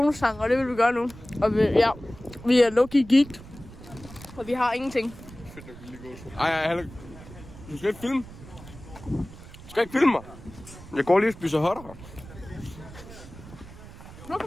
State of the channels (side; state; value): right; noise; rumble, 17 dB below the sound